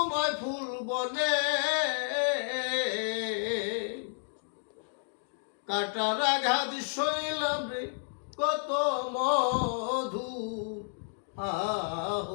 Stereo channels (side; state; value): right; silent; digital silence